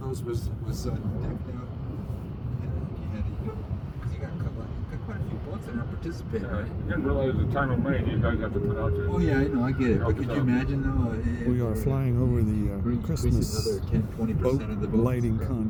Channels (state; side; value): identical; both; correlation 1.00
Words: was decked out? You got quite a few boats that aren't participating, Yeah, right? I didn't realize the time of rain you guys have to put out there. Oh yeah, I know, I get it. But could you imagine though? We are flying over the Christmas another 10-20% boat of the boats. lighting